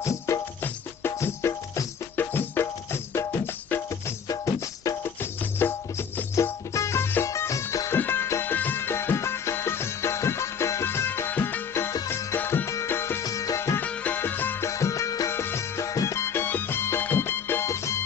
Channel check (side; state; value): right; quieter; 7.0 dB